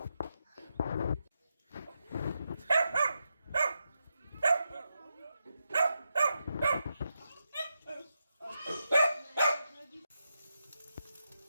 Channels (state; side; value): inverted; both; correlation -0.86